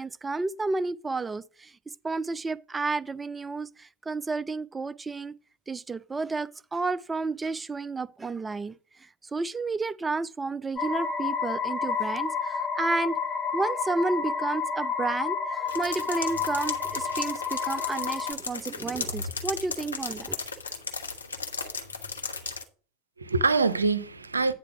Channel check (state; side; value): normal; both; correlation 0.39